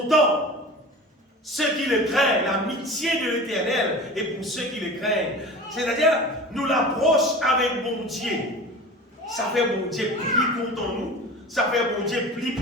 ceux qui le craignent, l'amitié de l'Éternel est pour ceux qui le craignent. C'est-à-dire, nous l'approche avec bon Dieu. Ça fait bon Dieu plus content nous, ça fait bon Dieu plus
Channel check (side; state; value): both; normal; correlation 0.36